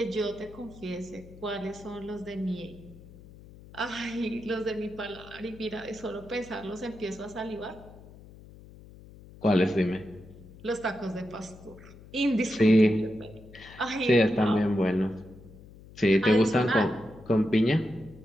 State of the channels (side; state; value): left; noise; hum, 20 dB below the sound